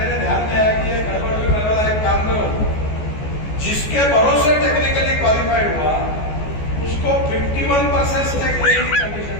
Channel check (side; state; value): right; late; 14 ms